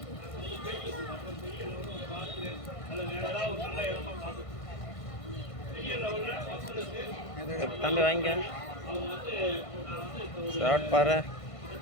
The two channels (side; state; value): right; late; 1.5 ms